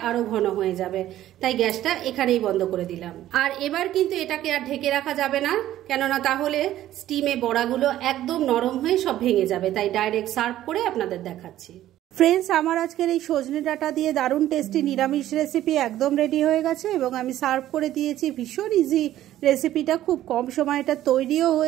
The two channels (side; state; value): left; quieter; 13.3 dB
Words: আরো ঘন হয়ে যাবে, তাই গ্যাসটা এখানেই বন্ধ করে দিলাম। আর এবার কিন্তু এটাকে আর ঢেকে রাখা যাবে না, কেননা তাহলে স্টিমে বড়াগুলো একদম নরম হয়ে সব ভেঙে যাবে। তাই ডাইরেক্ট সার্ভ করে আপনাদের দেখাচ্ছি। ফ্রেন্ডস, আমার আজকের এই সজনে ডাঁটা দিয়ে দারুণ টেস্টি নিরামিষ রেসিপি একদম রেডি হয়ে গেছে এবং আমি সার্ভ করে দিয়েছি। ভীষণ ইজি রেসিপিটা, খুব কম সময় এটা তৈরিও